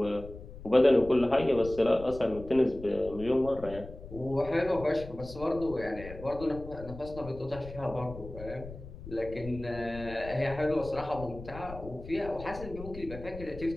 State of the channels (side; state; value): left; noise; rumble, 13 dB below the sound